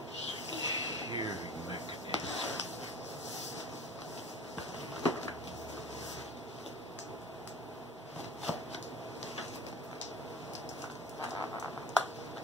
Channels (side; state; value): both; normal; correlation 0.40